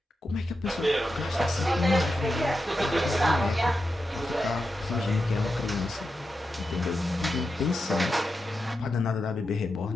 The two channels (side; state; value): both; normal; correlation 0.89